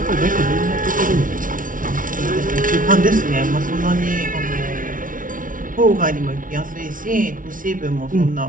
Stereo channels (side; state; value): left; late; 0.39 ms